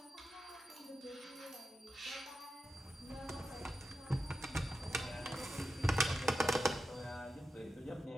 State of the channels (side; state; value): both; normal; correlation 0.90